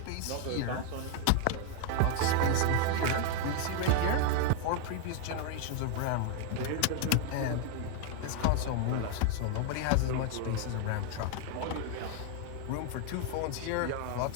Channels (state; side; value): different; both; correlation 0.01